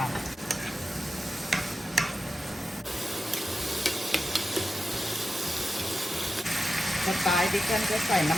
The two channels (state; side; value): normal; both; correlation 0.91